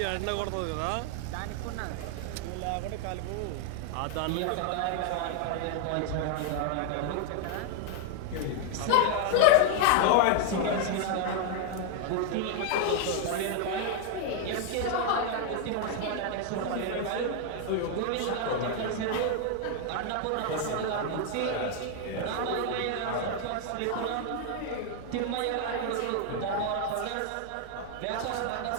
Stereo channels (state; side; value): different; both; correlation 0.00